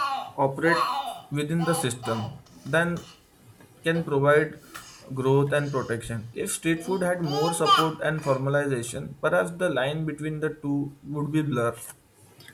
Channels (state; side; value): identical; both; correlation 1.00